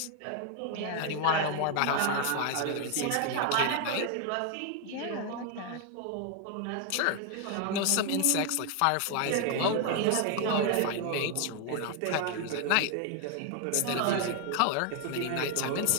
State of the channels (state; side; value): different; both; correlation 0.00